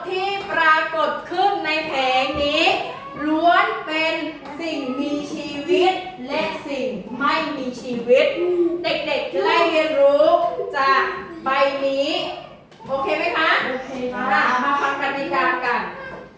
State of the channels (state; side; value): identical; both; correlation 1.00